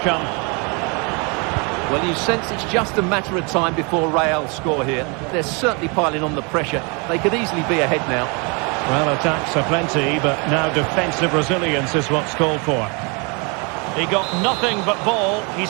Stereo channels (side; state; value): left; quieter; 32.0 dB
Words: Well, you sense it's just a matter of time before Real score here. They're certainly piling on the pressure. They could easily be ahead now. Well, attacks are plenty, but now defensive resilience is what's called for. He got nothing but ball. He's